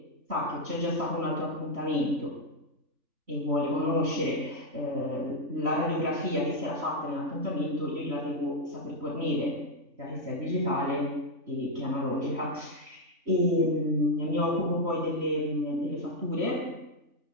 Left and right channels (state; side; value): late; left; 3.5 ms